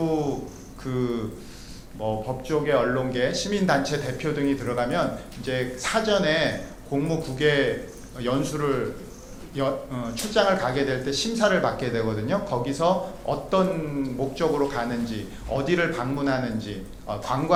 법조계, 언론계, 시민단체 대표 등이 들어가면 이제 사전에 공무 국외 연수를 출장을 가게 될 때 심사를 받게 되거든요. 거기서 어떤 목적으로 가는지, 어디를 방문하는지,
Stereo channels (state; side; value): identical; both; correlation 1.00